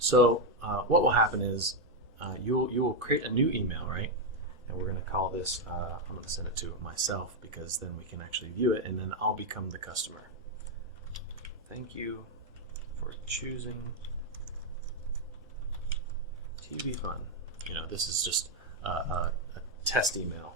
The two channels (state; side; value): normal; both; correlation 0.03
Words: what will happen is you will create a new email, right? And we're going to call this, I'm going to send it to myself, because then we can actually view it, and then I'll become the customer. Thank you for choosing TV Fun. This is just a test email.